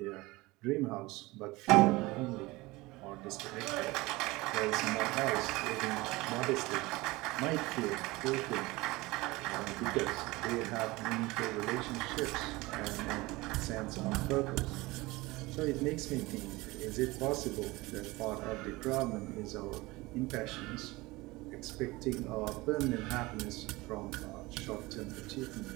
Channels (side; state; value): left; quieter; 21.5 dB